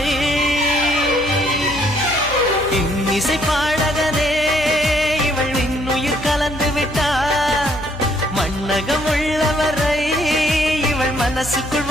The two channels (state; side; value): noise; left; hum, 13 dB below the sound